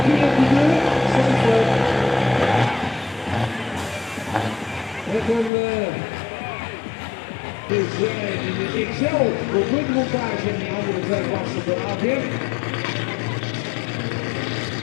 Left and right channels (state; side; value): drops out; right; at 5.5 s